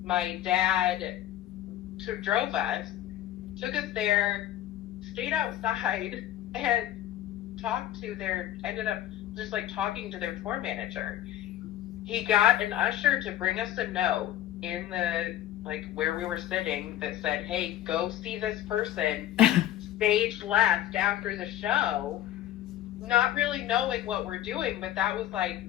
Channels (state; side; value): quieter; right; 13.0 dB